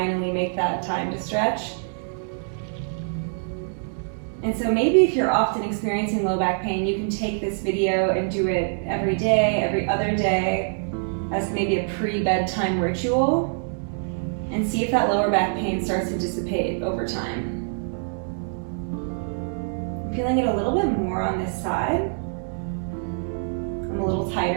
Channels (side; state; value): left; silent; digital silence